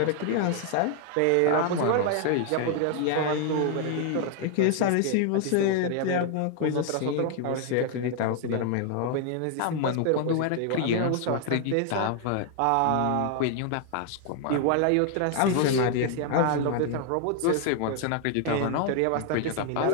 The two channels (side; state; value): both; different; correlation 0.00